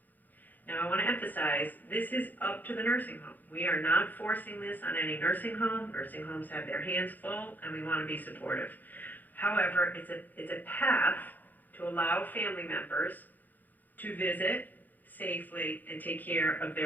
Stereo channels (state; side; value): late; right; 0.084 ms